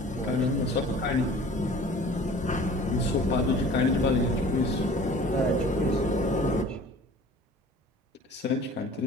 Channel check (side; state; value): both; normal; correlation 0.46